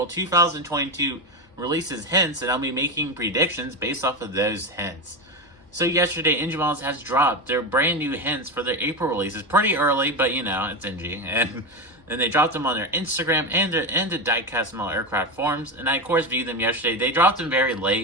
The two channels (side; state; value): both; normal; correlation 0.17